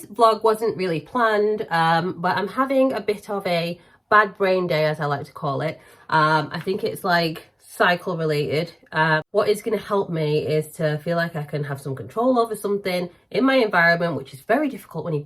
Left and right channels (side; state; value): both; identical; correlation 1.00